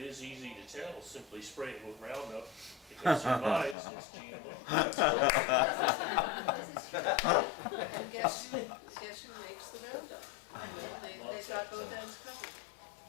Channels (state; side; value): drops out; right; at 3.8 s